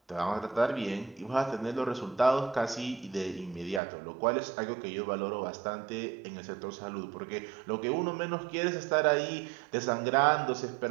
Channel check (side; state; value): left; drops out; at 3.8 s